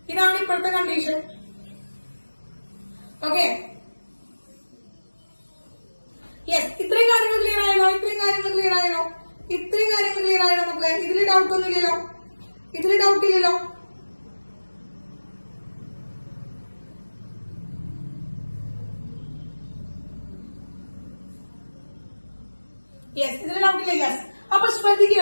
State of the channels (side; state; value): both; inverted; correlation -1.00